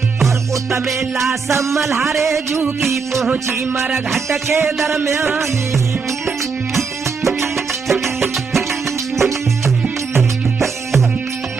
और उतमे लाश मल्हारे जू की पहुंची मरघट के दरमियान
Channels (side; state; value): left; quieter; 5.1 dB